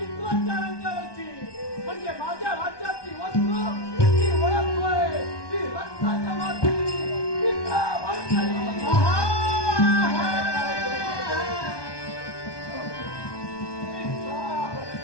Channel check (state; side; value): late; right; 1.2 ms